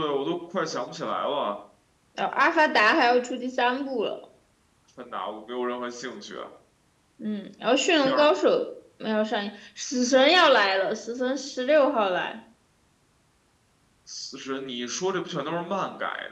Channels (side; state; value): both; identical; correlation 1.00